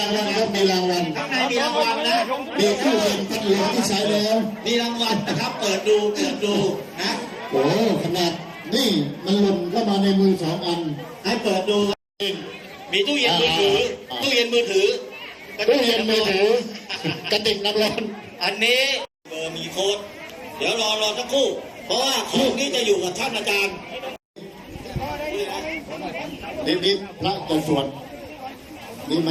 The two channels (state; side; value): identical; both; correlation 1.00